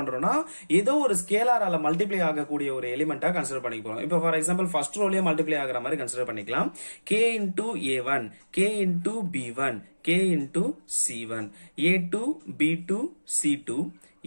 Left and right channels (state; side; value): inverted; both; correlation -1.00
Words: ஏதோ ஒரு ஸ்கேலாரால மல்டிப்ளை ஆகக்கூடிய ஒரு எலிமெண்டா கன்சிடர் பண்ணிக்க போறோம். இப்போ ஃபார் எக்ஸாம்பிள் ஃபர்ஸ்ட் ரோலயே மல்டிப்ளை ஆகிற மாதிரி கன்சிடர் பண்ணிக்கலாம். K into A1, K into B1, K into C1, A2 B2 C2,